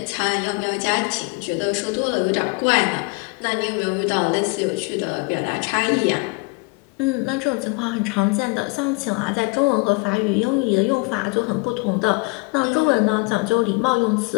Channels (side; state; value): right; quieter; 29.5 dB